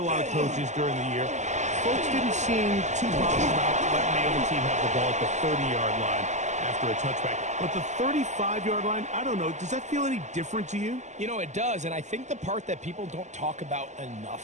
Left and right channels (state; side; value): late; left; 0.34 ms